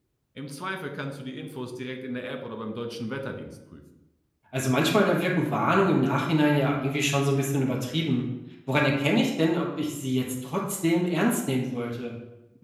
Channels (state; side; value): identical; both; correlation 1.00